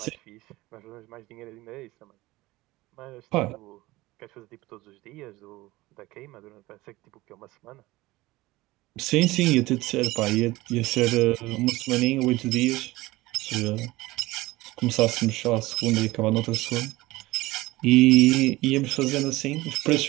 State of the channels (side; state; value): left; quieter; 19.4 dB